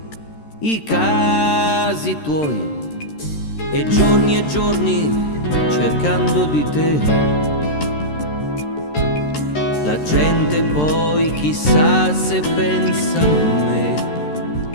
i casi tuoi e giorni cercando di te. La gente poi chissà se pensa a me,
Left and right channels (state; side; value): late; right; 13 ms